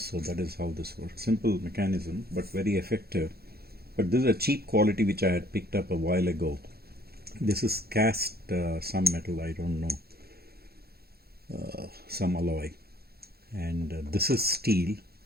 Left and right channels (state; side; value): late; left; 0.46 ms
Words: that is how this works. Simple mechanism, but very effective. But this is a cheap quality which I had picked up a while ago. This is cast some metal, I don't know, some alloy, and this is steel,